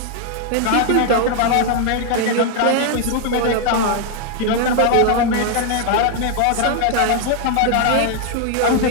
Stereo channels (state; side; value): different; both; correlation 0.00